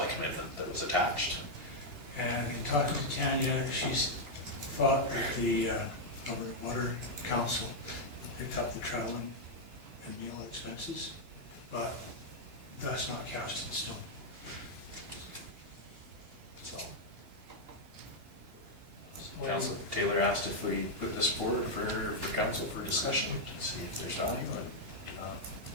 commitment that was attached. And in talking to Tanya, she's thought that the Alberta Water Council picked up the traveling and meal expenses, but that's not cast in stone. So Councillor Taylor asked if we put this forward for council for discussion, to see if there's value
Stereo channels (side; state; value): left; late; 2.9 ms